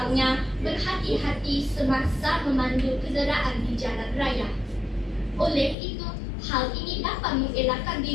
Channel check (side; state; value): right; drops out; at 5.8 s